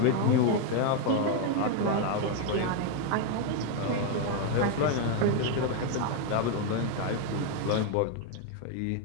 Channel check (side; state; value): both; different; correlation 0.01